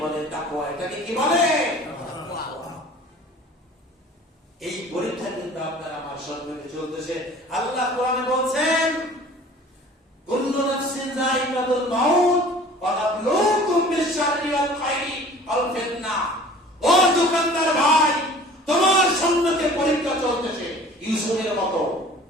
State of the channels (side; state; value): both; normal; correlation 0.46